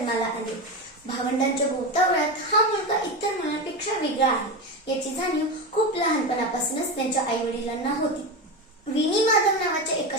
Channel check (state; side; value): normal; both; correlation 0.18